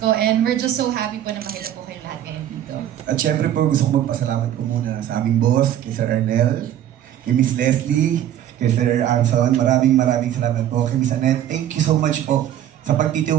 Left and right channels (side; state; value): left; quieter; 11.3 dB